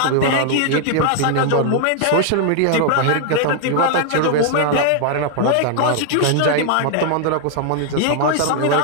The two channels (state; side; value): different; both; correlation 0.00